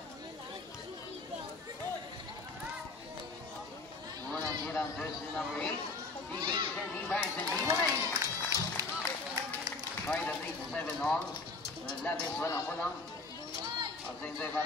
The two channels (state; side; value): quieter; right; 3.7 dB